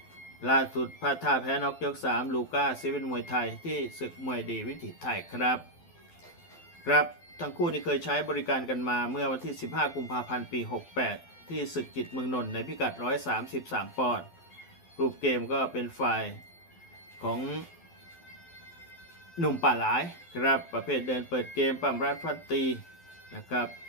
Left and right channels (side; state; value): right; late; 12 ms